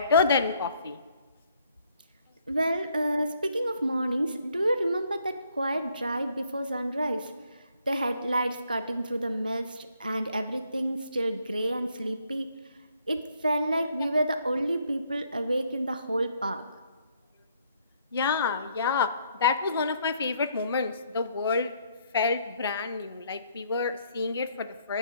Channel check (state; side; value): inverted; both; correlation -0.68